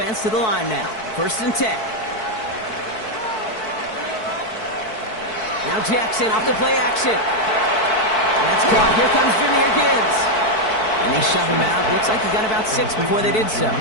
to the line now. 1st and 10. Now Jackson off the play action. That's caught. Here comes Jahmyr Gibbs. And they shove him out. Looks like he got about 6 before they did so.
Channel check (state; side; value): late; right; 4.6 ms